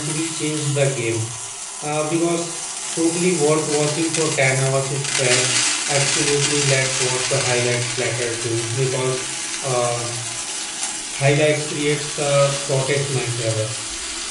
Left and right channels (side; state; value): both; identical; correlation 1.00